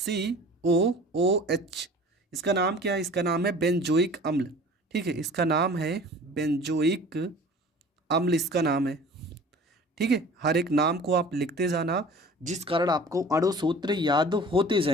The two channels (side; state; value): both; normal; correlation 0.44